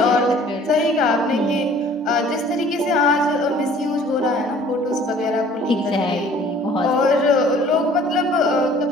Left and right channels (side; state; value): both; normal; correlation 0.52